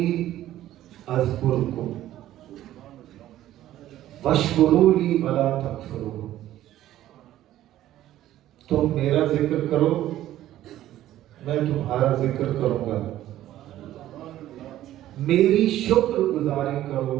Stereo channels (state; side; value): quieter; left; 13.5 dB